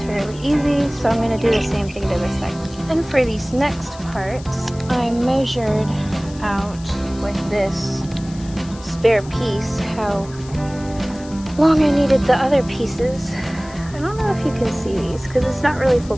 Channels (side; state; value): left; noise; hiss, 20 dB below the sound